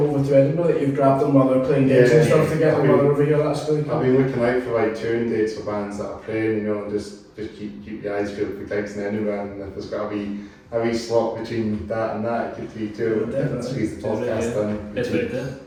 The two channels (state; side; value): identical; both; correlation 1.00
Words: to Edinburgh that you've grabbed them while they're playing gigs and stuff to get them while they're over here. That's really cool. I've been looking out for touring dates for bands that are playing, and just keep your eyes peeled for gigs in Edinburgh, and if there's got to be a wee slot between that and that, it could be too. Squeeze the podcast in. It's very good.